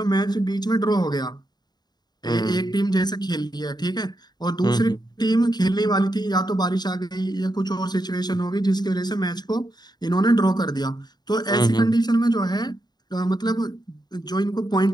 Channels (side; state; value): right; late; 0.20 ms